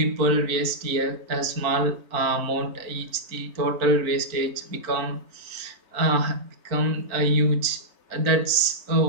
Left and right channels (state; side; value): late; left; 4.4 ms